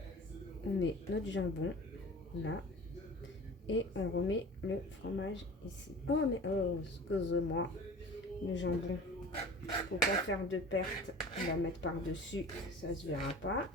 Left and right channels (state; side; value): normal; both; correlation 0.40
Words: On met notre jambon là. Et on remet le fromage ici. Oh, mais oh, excusez-moi. Le jambon. Faut pas faire de perte. On va mettre par-dessus. Ça se verra pas.